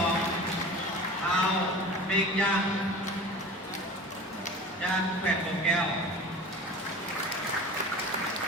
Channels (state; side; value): normal; both; correlation 0.37